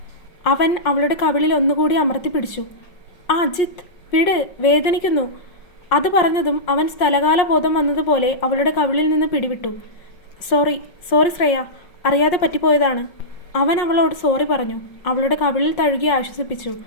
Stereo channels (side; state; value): right; late; 5.6 ms